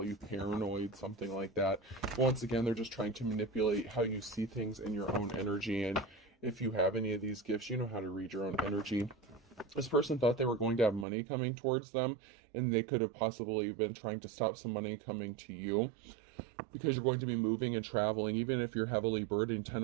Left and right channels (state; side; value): drops out; left; at 11.1 s